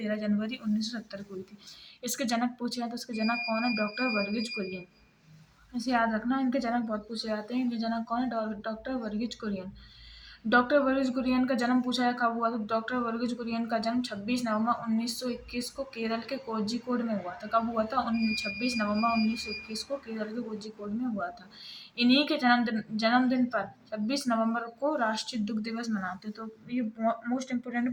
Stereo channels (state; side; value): identical; both; correlation 1.00